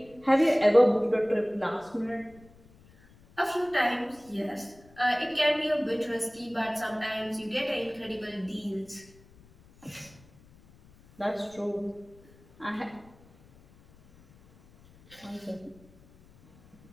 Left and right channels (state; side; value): noise; left; rumble, 26 dB below the sound